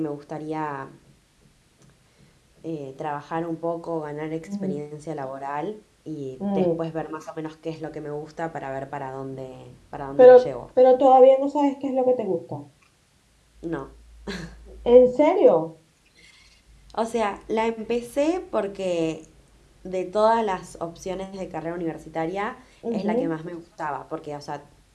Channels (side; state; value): both; identical; correlation 1.00